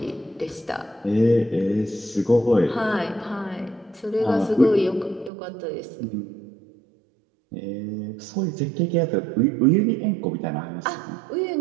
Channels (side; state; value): left; drops out; at 5.3 s